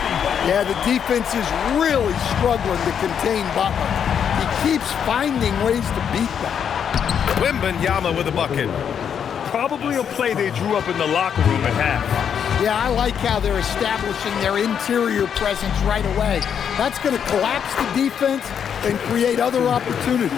Yeah, the defense is really struggling to contain Butler. He keeps finding ways to beat them. Wembanyama with a bucket. Probably a play they drew up in the locker room at half. Yeah, I like how they're establishing their interior presence right away. That's going to collapse the defense and create other opportunities.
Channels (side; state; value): right; quieter; 8.0 dB